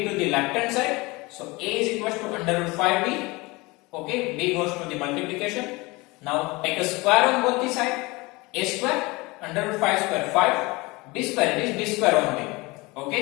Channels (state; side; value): quieter; right; 23.7 dB